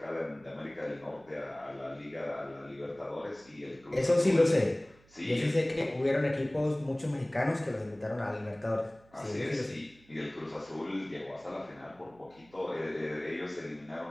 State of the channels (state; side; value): noise; right; hum, 28 dB below the sound